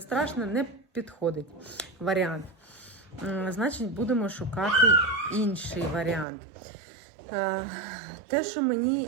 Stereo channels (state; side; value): drops out; left; at 6.2 s